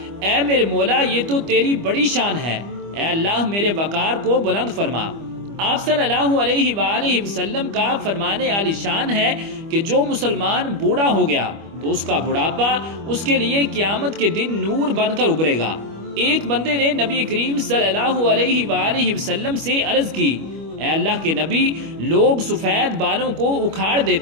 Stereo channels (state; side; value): late; left; 25 ms